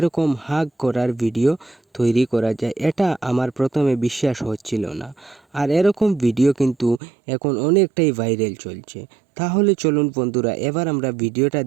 হাগ করার ভিডিও তৈরি করা যায়, এটা আমার প্রথমে বিশ্বাস হচ্ছিল না। আর এরকম ভিডিও কিন্তু এখন অনেকটাই ভাইরাল চলছে। তাহলে চলুন বন্ধুরা, এবার আমরা ভিডিওটা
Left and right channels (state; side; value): drops out; left; at 7.0 s